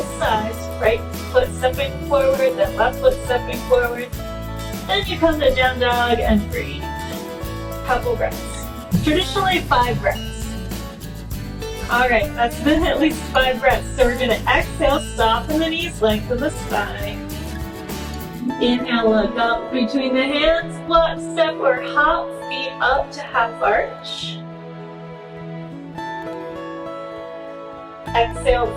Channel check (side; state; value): both; identical; correlation 1.00